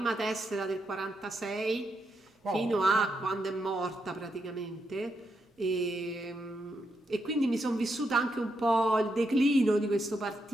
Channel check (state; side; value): normal; both; correlation 0.81